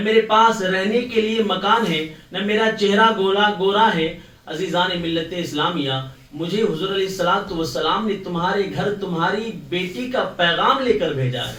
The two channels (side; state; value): both; identical; correlation 1.00